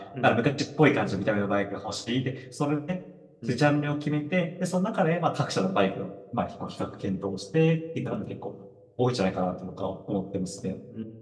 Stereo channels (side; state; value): both; identical; correlation 1.00